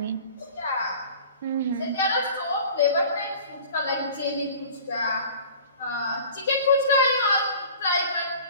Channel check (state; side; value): inverted; both; correlation -0.44